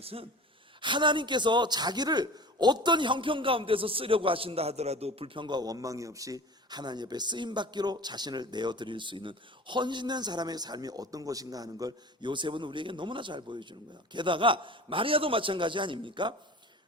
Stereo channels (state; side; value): normal; both; correlation 0.38